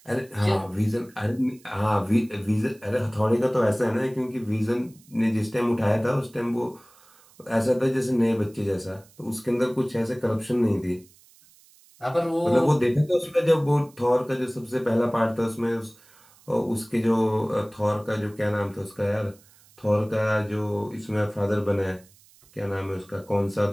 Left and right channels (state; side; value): noise; right; hiss, 28 dB below the sound